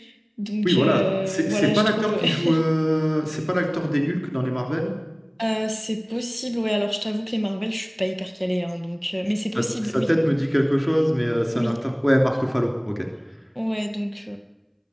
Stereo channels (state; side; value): identical; both; correlation 1.00